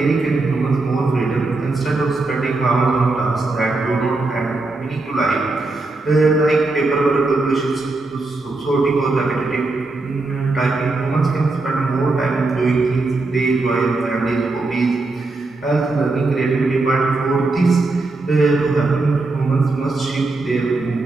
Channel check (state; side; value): quieter; left; 3.3 dB